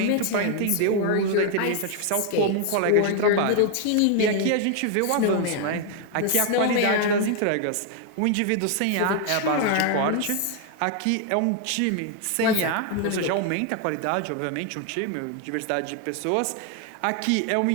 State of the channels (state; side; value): different; both; correlation 0.00